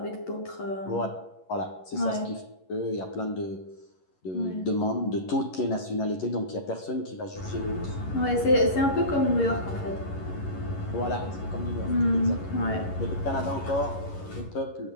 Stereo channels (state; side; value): late; right; 11 ms